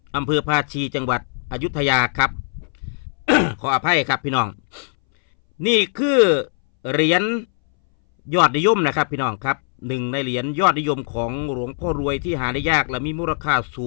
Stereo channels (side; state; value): right; silent; 63 dB below the other